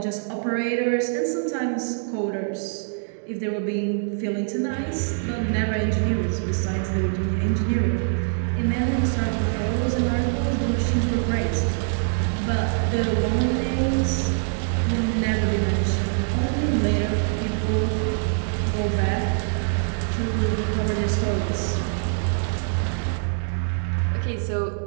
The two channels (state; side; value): silent; left; digital silence